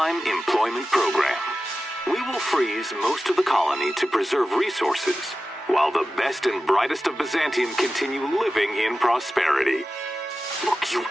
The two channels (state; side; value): normal; both; correlation 0.94